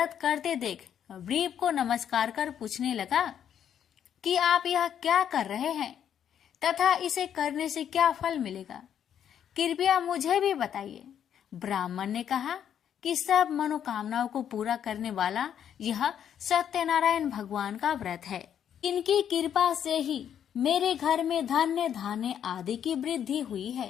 करते देख व्रीप को नमस्कार कर पूछने लगा कि आप यह क्या कर रहे हैं तथा इसे करने से क्या फल मिलेगा, कृपया मुझे भी बताइए। ब्राह्मण ने कहा कि सब मनोकामनाओं को पूरा करने वाला यह सत्यनारायण भगवान का व्रत है। इनकी कृपा से ही मेरे घर में धन्य धान्य आदि की वृद्धि हुई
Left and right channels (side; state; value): right; quieter; 9.2 dB